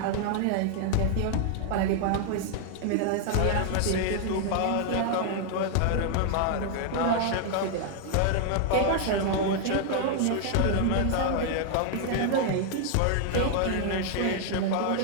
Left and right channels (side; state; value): both; different; correlation 0.00